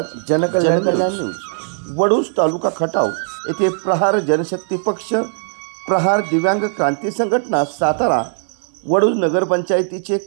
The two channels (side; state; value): left; silent; 63 dB below the other